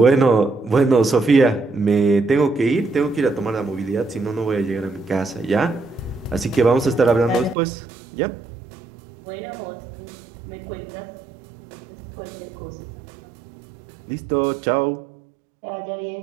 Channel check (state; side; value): drops out; left; at 7.6 s